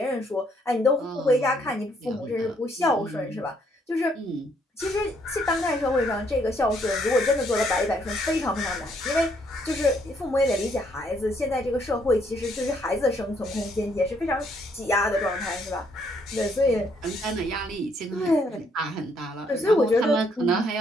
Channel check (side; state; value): both; normal; correlation 0.70